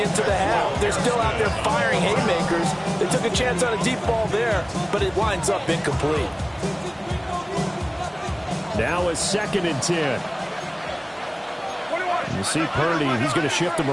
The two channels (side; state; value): both; identical; correlation 1.00